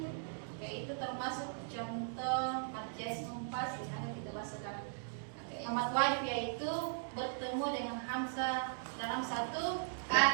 Oke, itu termasuk contoh mat jais mufassir yang kita bahas sekarang. Oke, yang mat wajib yaitu bertemu dengan hamzah dalam satu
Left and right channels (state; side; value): silent; left; digital silence